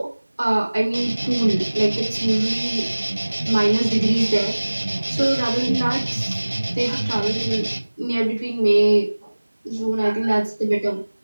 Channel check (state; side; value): inverted; both; correlation -1.00